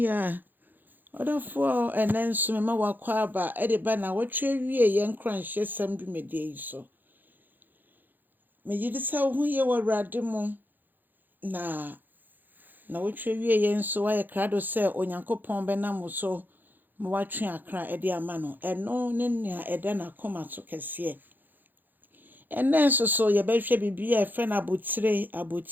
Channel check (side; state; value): left; late; 0.088 ms